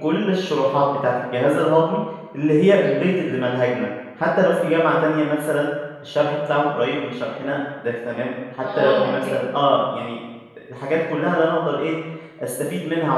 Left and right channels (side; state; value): both; identical; correlation 1.00